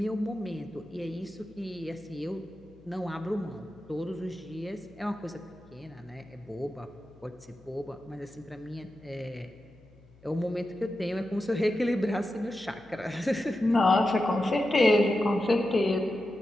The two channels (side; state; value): left; noise; hum, 25 dB below the sound